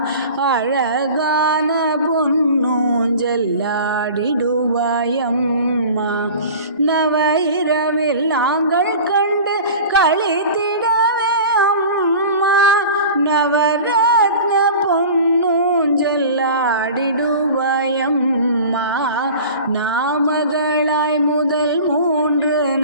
அழகான பொன்னூஞ்சல்லாடிடுவாய் அம்மா. நவ இரவில் நாங்கள் கண்டு களித்திடவே அம்மா, நவரத்ன பொன்னூஞ்சல்லாடிடுவாய் அம்மா. நாமகளாய் முதல் 3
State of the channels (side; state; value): both; inverted; correlation -0.38